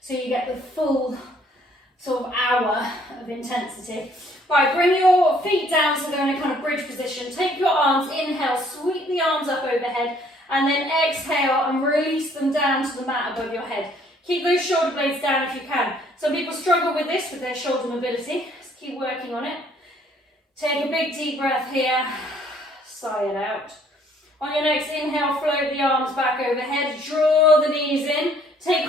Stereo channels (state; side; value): normal; both; correlation 0.62